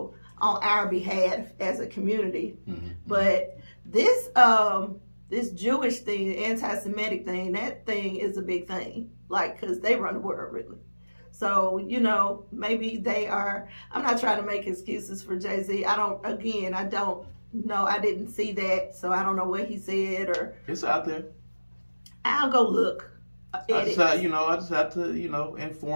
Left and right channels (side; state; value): both; inverted; correlation -1.00